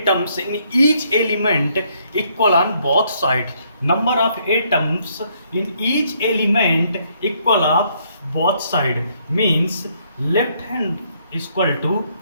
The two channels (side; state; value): both; inverted; correlation -0.69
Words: in each element equal on both sides. Number of atoms in each element equal of both side means left hand is equal to